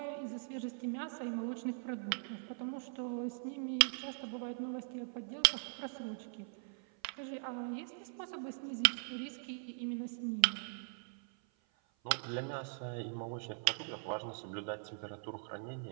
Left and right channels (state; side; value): silent; left; 51 dB below the other